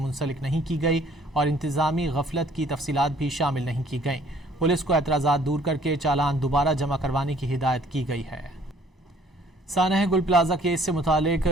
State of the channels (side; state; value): both; normal; correlation 0.58